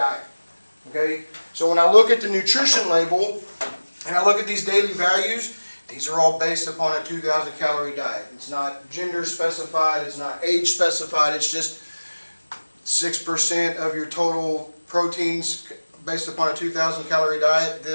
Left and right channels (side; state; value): both; inverted; correlation -1.00